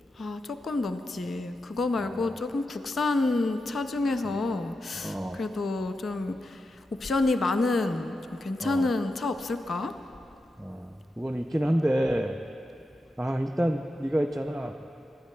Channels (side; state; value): both; normal; correlation 0.89